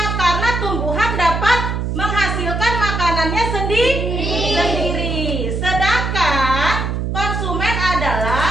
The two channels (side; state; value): right; noise; hum, 2 dB below the sound